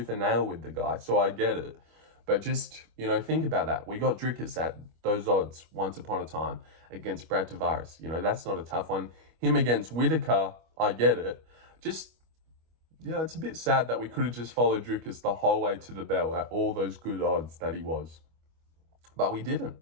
and nail with the guy, so I get it. But just, think about that. We got Dricus at those odds once upon a time against Brad Tavares. That's not a tough one. Him against Whitaker, I get it. Just, it's a bit sad that we could have just followed Dricus the whole way to the bell at all those good odds that he was. But we didn't.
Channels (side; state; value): left; late; 25 ms